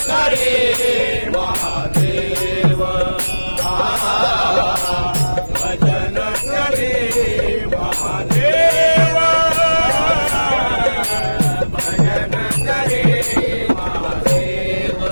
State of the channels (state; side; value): inverted; both; correlation -1.00